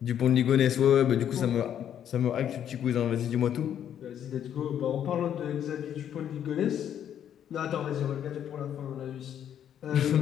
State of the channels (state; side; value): quieter; right; 9.7 dB